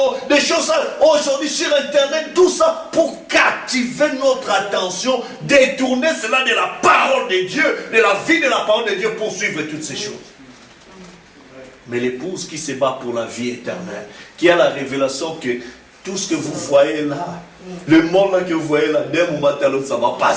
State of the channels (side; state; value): both; identical; correlation 1.00